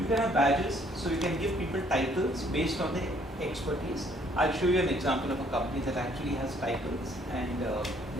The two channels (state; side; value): normal; both; correlation 0.63